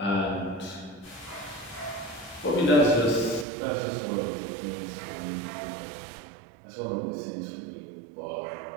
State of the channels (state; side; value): drops out; left; at 3.5 s